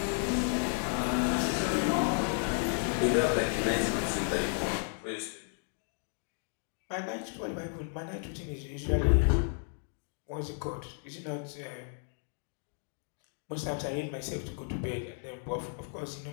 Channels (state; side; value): silent; right; 56 dB below the other